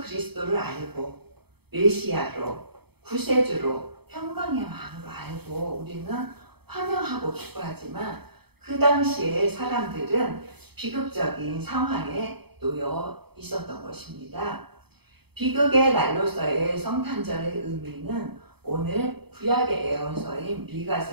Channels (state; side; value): late; left; 0.97 ms